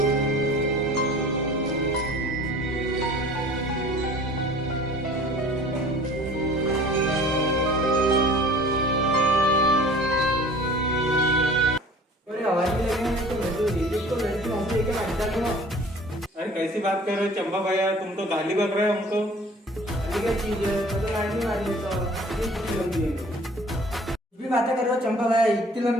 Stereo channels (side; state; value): both; normal; correlation 0.47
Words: अरे कैसी बात कर रहे हो चंपा भैया, तुम तो गाली बक रहे हो हमको। भी बातें कर रहे हो चंपा भाई, इतनी